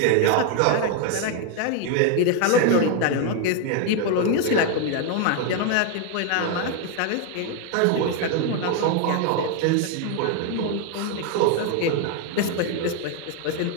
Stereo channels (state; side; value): different; both; correlation 0.01